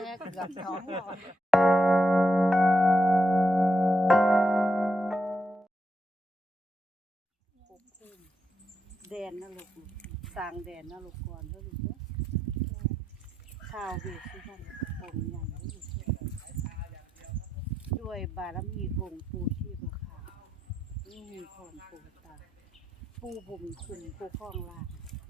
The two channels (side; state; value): both; normal; correlation 0.82